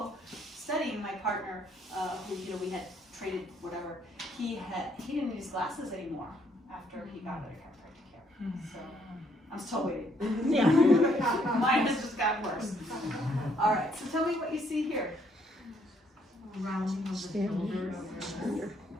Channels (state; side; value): normal; both; correlation 0.69